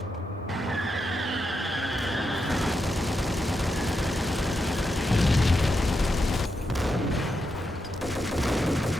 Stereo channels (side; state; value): both; normal; correlation 0.85